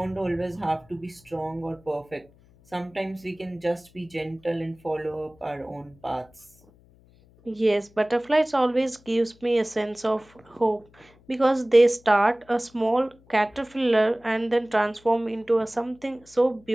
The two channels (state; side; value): noise; left; hum, 29 dB below the sound